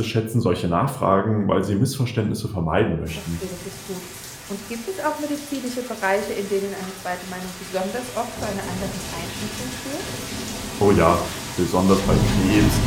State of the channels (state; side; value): identical; both; correlation 1.00